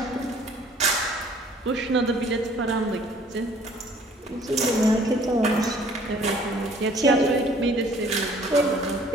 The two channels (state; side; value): normal; both; correlation 0.56